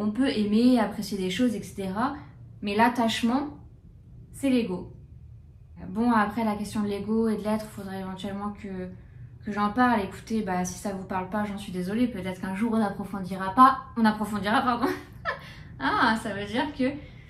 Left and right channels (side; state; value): both; identical; correlation 1.00